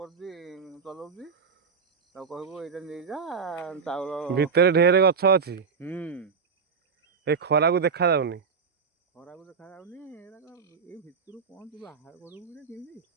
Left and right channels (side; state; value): left; quieter; 5.7 dB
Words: ଚଲାଉଛି ତାକୁ କହିବୁ ଏଇଟା ନେଇଯା ଚାଉଳ ଭିତରେ ଢେର ଗଛ ଅଛି ଏ ଖରାକୁ ଦେଖା ଯାଉନି ଏଇ ଭିତରୁ କଣ ତୁ ବାହାର କରିବୁ କି କେମିତି